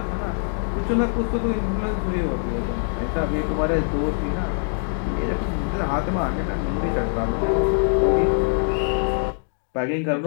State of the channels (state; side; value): silent; right; 63 dB below the other